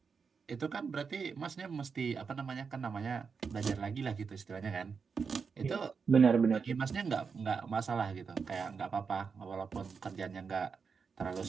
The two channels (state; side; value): quieter; left; 5.6 dB